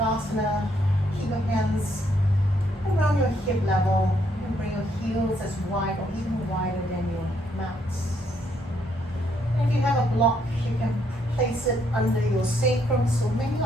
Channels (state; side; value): normal; both; correlation 0.72